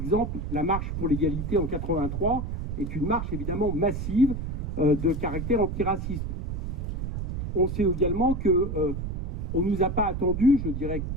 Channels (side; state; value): right; noise; rumble, 4 dB below the sound